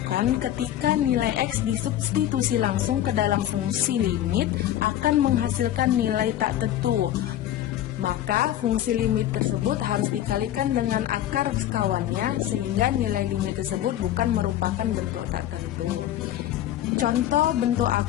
ketika nilai X disubstitusi langsung ke dalam fungsi limit akan menghasilkan nilai tak tentu. Maka fungsi limit tersebut harus dikalikan dengan akar sekawannya sehingga nilai limit tersebut bukan merupakan bentuk tak tentu. Contoh bentuk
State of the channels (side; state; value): right; quieter; 12.5 dB